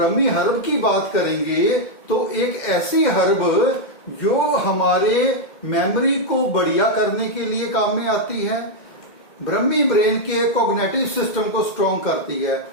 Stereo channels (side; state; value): right; late; 2.1 ms